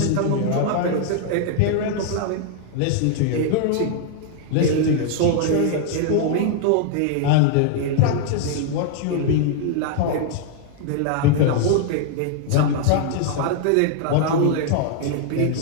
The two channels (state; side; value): different; both; correlation 0.00